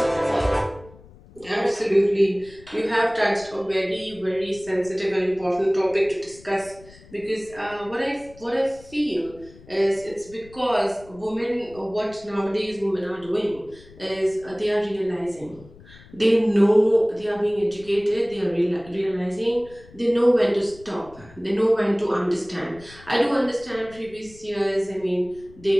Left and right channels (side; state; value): left; noise; rumble, 22 dB below the sound